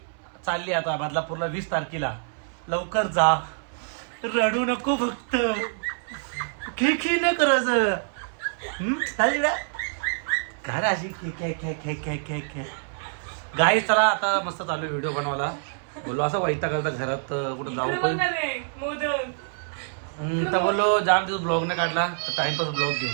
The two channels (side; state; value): left; silent; 60 dB below the other